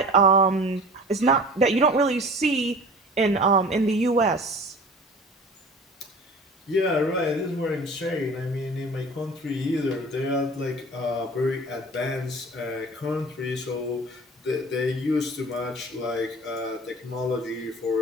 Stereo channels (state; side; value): normal; both; correlation 0.41